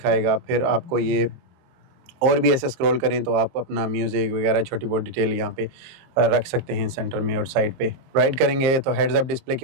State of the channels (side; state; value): left; late; 22 ms